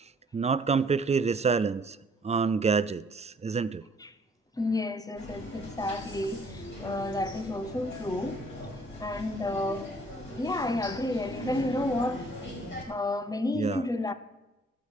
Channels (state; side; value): normal; both; correlation 0.60